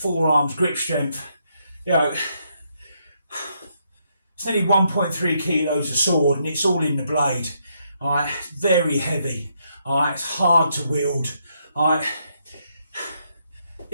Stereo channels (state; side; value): inverted; both; correlation -0.76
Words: grip strength. You know, it's nearly 1.3 kilos of sword, and it's all in the blade. Alright, very heavy. Alright, it's hard to wield. Alright,